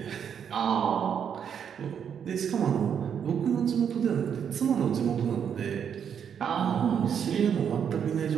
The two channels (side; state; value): left; quieter; 7.9 dB